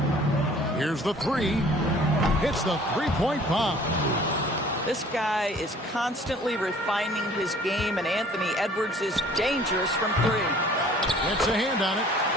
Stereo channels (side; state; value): both; normal; correlation 0.52